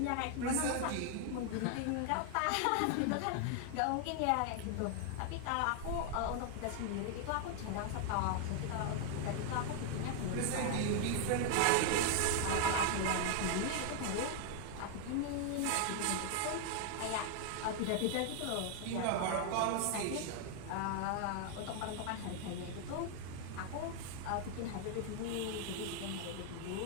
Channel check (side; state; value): both; different; correlation 0.00